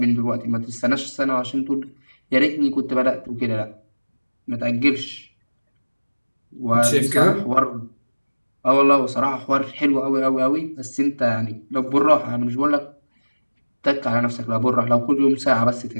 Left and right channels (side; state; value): both; inverted; correlation -1.00